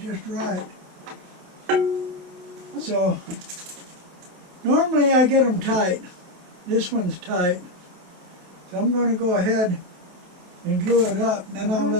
right. So, normally I get them tight. This one's tight. So I'm going to go ahead and glue it up. Then I'll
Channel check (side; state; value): left; late; 28 ms